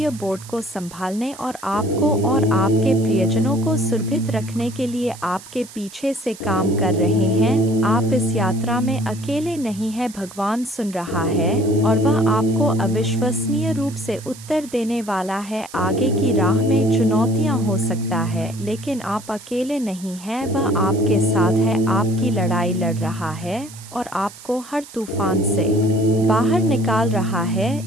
बोर्ड को संभालने और आपको और आपके प्रियजनों को सुरक्षित रखने के लिए आपके पीछे से काम कर रहे हैं। आप इस यात्रा में अकेले नहीं हैं, भगवान सुन रहा है और वह आपको अविश्वसनीय रूप से उत्तर देने वाला है। आगे की राह में चुनौतियाँ हो सकता है लेकिन आप अकेले नहीं हैं, वह आपके साथ है, आपकी लड़ाई लड़ रहा है और आपको हर तूफान से बाहर निकाल रहा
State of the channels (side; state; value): right; noise; hiss, 18 dB below the sound